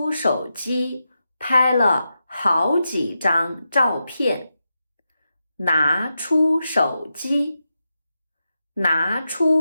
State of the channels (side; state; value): both; inverted; correlation -0.89